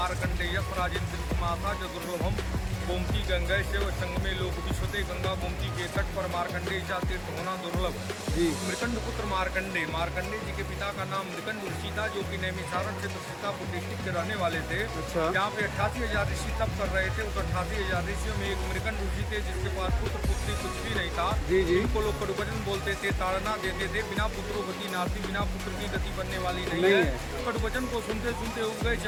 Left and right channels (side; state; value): both; identical; correlation 1.00